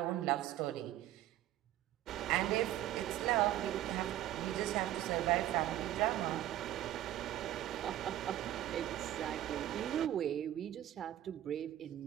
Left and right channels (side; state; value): left; quieter; 13.2 dB